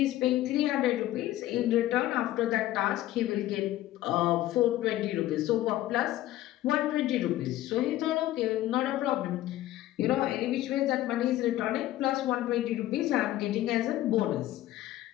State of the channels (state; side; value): quieter; right; 14.7 dB